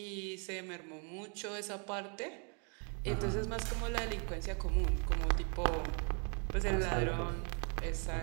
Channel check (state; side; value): quieter; left; 38.5 dB